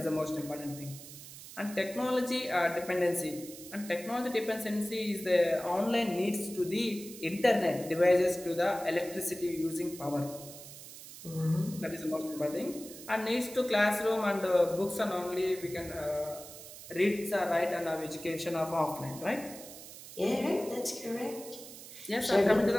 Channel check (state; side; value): noise; right; hiss, 14 dB below the sound